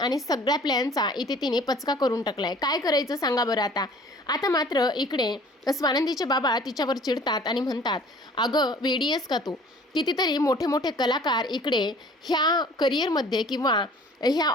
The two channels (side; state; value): both; normal; correlation 0.51